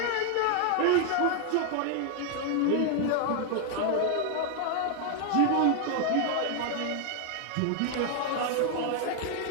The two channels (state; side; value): different; both; correlation 0.00